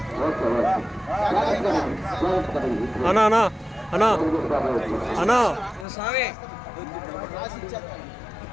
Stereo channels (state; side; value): drops out; right; at 5.9 s